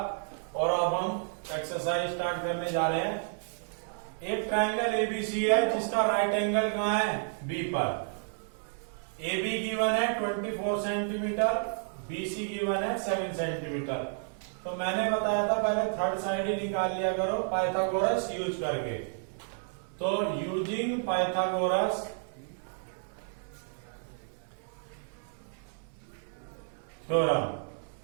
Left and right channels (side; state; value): left; silent; 57 dB below the other